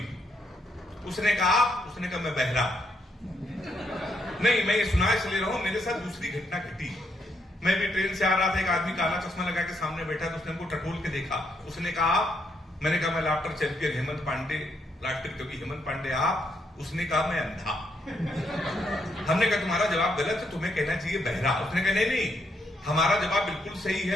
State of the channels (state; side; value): normal; both; correlation 0.76